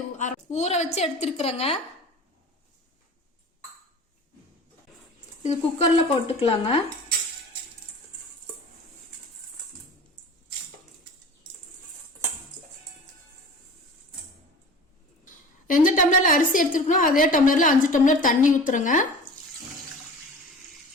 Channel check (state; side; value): normal; both; correlation 0.38